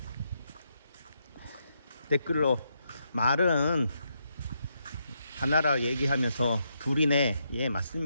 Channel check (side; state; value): both; inverted; correlation -0.79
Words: 댓글로 말은 하나라 얘기하면서 둘이네. 예,